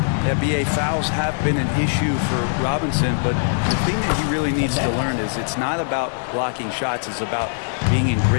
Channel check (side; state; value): right; silent; 58 dB below the other